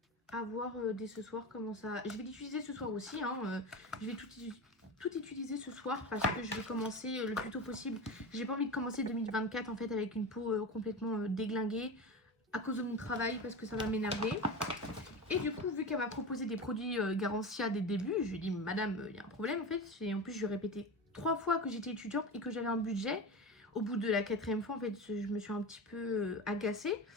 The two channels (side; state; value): both; normal; correlation 0.25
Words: À voir dès ce soir comment ça... Je vais l'utiliser ce soir aussi, hein. Je vais tout utiliser ce soir parce que je vais commencer le plus tôt possible. J'ai pas envie de commencer 2024 en fait avec une peau complètement déglinguée à cause de mon travail parce que ça va m'énerver. Et du coup, vu qu'elle m'a proposé des produits Garancia dès le début, je lui ai dit madame, il y a un problème en fait. Et en plus, je lui ai répété 3 fois que j'étais étudiante et que j'avais un budget. Au bout de la 4e fois, en fait, je me suis un petit peu agacée.